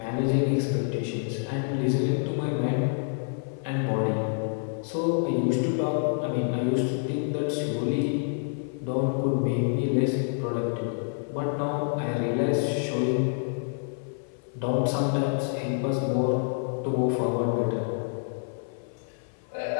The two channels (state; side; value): silent; right; 57 dB below the other